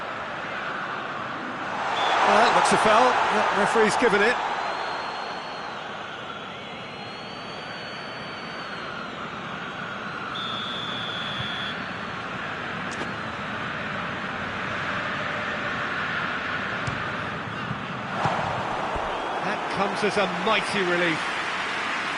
Well, that looks a foul. The referee's given it. That comes as a mighty relief.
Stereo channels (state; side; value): identical; both; correlation 1.00